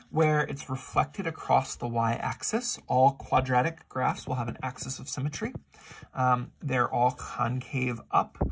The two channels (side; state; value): both; identical; correlation 1.00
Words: Where it's reflected across the y-axis. All quadratic graphs will have an axis of symmetry. They're all concave up.